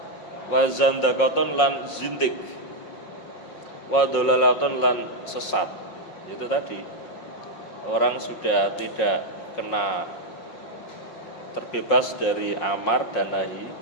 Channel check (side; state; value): right; late; 5.5 ms